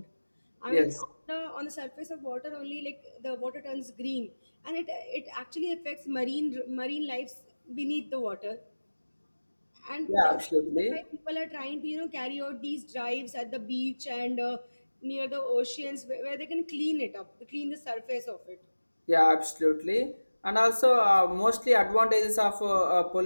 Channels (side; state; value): both; inverted; correlation -1.00